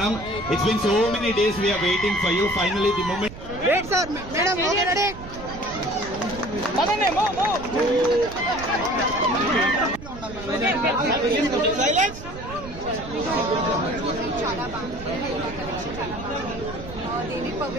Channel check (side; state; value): right; noise; rumble, 13 dB below the sound